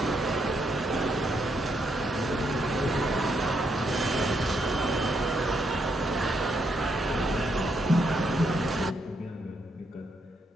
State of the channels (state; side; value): normal; both; correlation 0.77